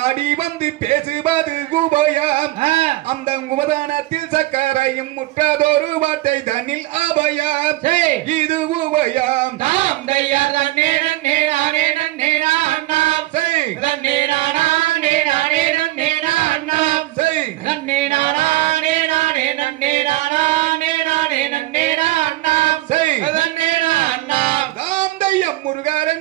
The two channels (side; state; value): left; quieter; 17.7 dB